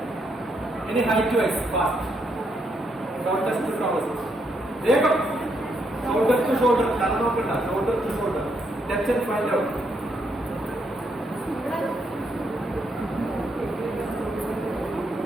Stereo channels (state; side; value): normal; both; correlation 0.76